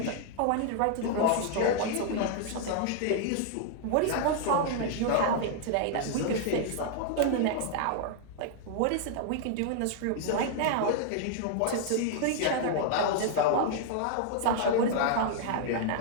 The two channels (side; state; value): both; different; correlation 0.00